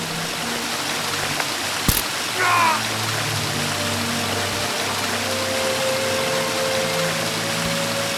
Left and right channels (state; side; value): identical; both; correlation 1.00